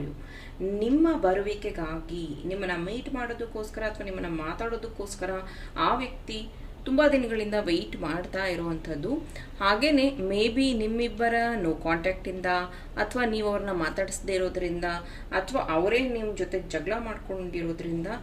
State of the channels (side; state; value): both; identical; correlation 1.00